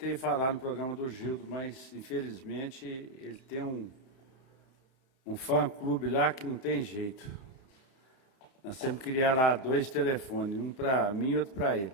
falar no programa do Gildo, mas infelizmente ele tem um fã-clube lá que não tem jeito. Nós temos que criar lá 2 telefones, um para mim e outro para ele.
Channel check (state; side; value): late; right; 31 ms